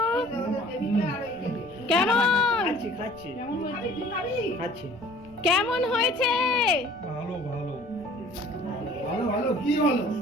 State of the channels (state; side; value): noise; right; rumble, 25 dB below the sound